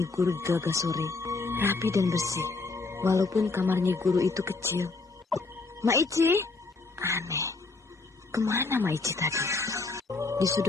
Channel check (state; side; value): quieter; right; 3.8 dB